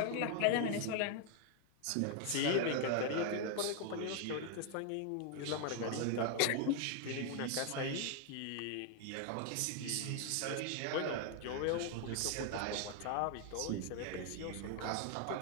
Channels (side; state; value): both; different; correlation 0.00